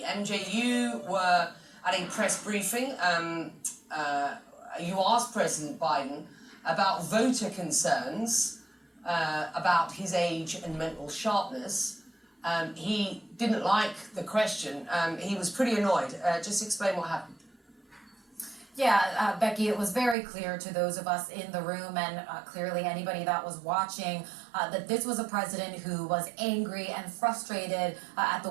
MJ, you were at a press briefing. You asked President Biden about voter concerns about his age and mental sharpness. He didn't like the question. He was pretty annoyed. Just explain what happened. Yeah, Becky, it was very clear to those of us in the room and clearly anybody that was watching that this was a president who was angry and frustrated at the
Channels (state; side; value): drops out; left; at 20.2 s